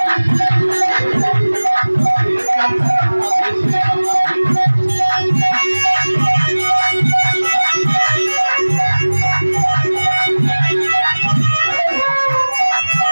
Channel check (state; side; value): inverted; both; correlation -1.00